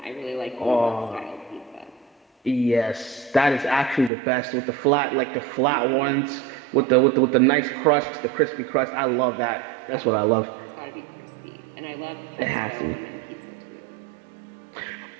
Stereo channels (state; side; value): drops out; left; at 4.1 s